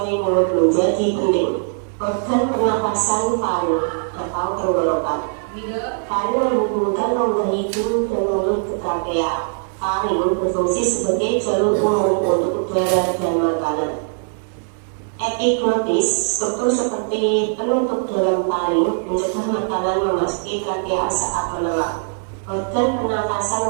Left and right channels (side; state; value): left; silent; 65 dB below the other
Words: mulut menjadi penting. Organ pernapasan paru atau tenggorokan. Paru menghubungkan rongga hidung dan mulut ke trakea. Paru berfungsi sebagai jalur umum untuk udara dan makanan. Epiglotis, struktur seperti penutup dalam taring, mencegah makanan memasuki trakea saat menelan. Organ pernapasan